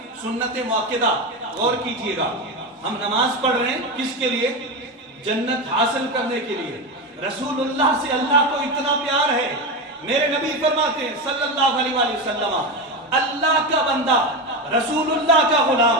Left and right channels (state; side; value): normal; both; correlation 0.17